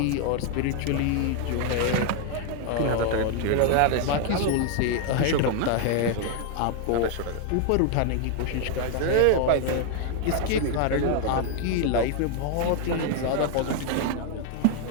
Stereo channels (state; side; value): different; both; correlation 0.00